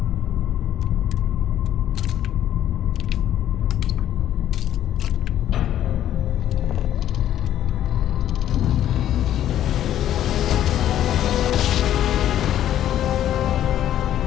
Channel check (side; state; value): right; quieter; 11.6 dB